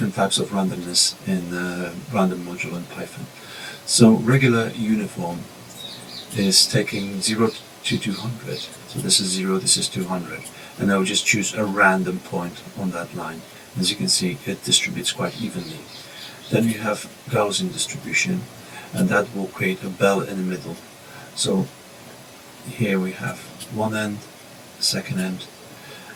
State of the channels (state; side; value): identical; both; correlation 1.00